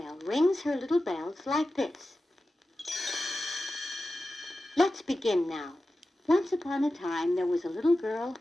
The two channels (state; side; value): normal; both; correlation 0.93